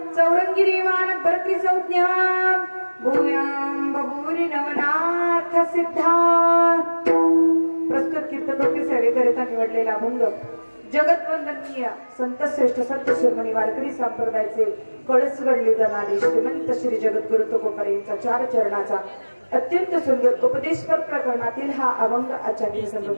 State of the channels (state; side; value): inverted; both; correlation -1.00